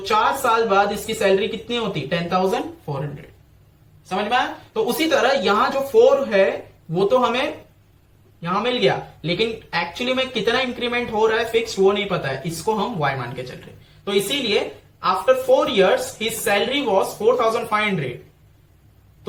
साल बाद इसकी सैलरी कितनी होती, 10,400। समझ में आया? तो उसी तरह यहां जो 4 है वो तो हमें यहां मिल गया, लेकिन एक्चुअली में कितना इंक्रीमेंट हो रहा है फिक्स वो नहीं पता है, इसको हम Y मान के चल रहे। तो इसीलिए after 4 years his salary was 4,500।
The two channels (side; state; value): both; identical; correlation 1.00